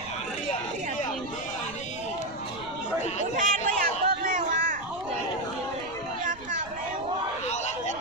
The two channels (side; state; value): right; noise; rumble, 19 dB below the sound